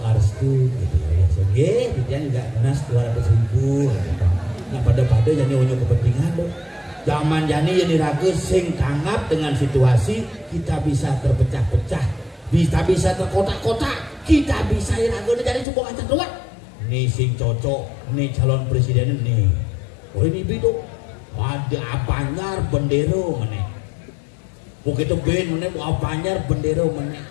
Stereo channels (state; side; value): drops out; right; at 15.7 s